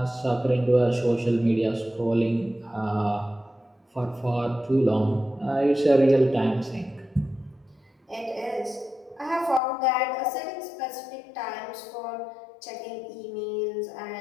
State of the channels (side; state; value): right; drops out; at 9.6 s